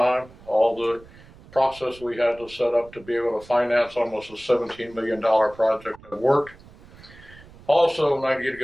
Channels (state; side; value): noise; right; rumble, 22 dB below the sound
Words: All the process we had to set up to be able to finance almost a $17 million project have worked. Also, I need to